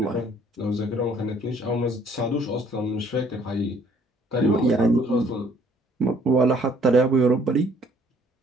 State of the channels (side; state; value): both; normal; correlation 0.60